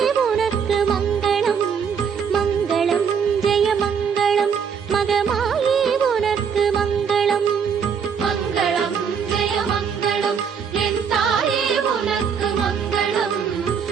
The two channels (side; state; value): left; quieter; 6.8 dB